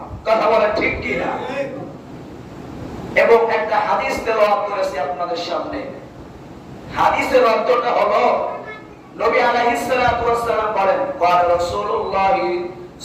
কথা বলেন ঠিক কি না? এবং একটা হাদিস তেলাওয়াত করেছি আপনাদের সামনে। হাদিসের অর্থটা হলো, নবী আলাইহিস সালাতু ওয়াস সালাম বলেন, ক্বাল রাসূলুল্লাহ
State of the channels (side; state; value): both; identical; correlation 1.00